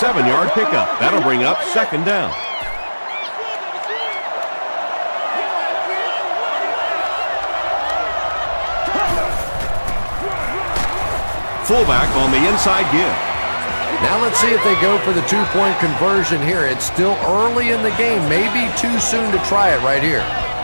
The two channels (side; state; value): both; inverted; correlation -1.00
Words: pickup. That'll bring up 2nd down. Fullback on the inside give. Now let's see if they go for the 2-point conversion here. It's still early in the game. Maybe too soon to try it right here.